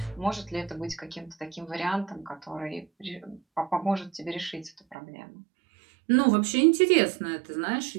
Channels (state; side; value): drops out; left; at 5.0 s